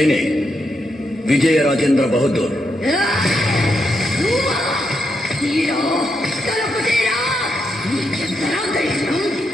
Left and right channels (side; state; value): both; normal; correlation 0.82